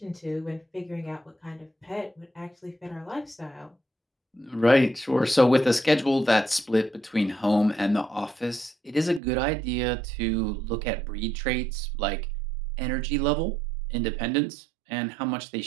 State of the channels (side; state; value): left; drops out; at 9.2 s